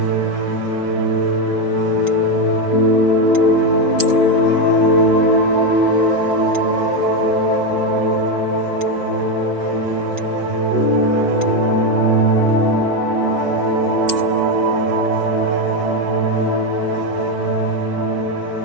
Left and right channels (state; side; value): late; left; 5.2 ms